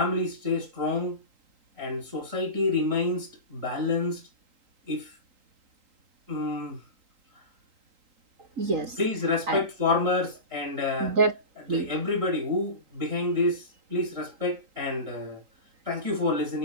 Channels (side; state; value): left; late; 3.8 ms